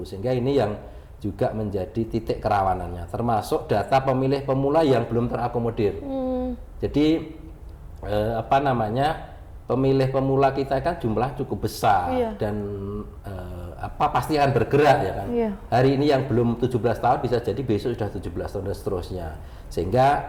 sehingga ini yang juga menjadi titik kerawanannya, termasuk data pemilih pemula yang belum terakomodir. Jadi pemilih pemula kita kan jumlah cukup besar dan pasti akan bergerak ya kan. Hari ini yang belum 17 tahun bisa jadi besok sudah 17 tahun dan seterusnya. Sehingga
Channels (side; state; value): both; identical; correlation 1.00